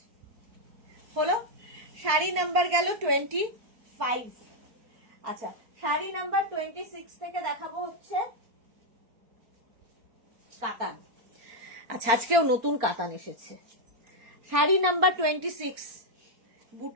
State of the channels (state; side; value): late; left; 4.5 ms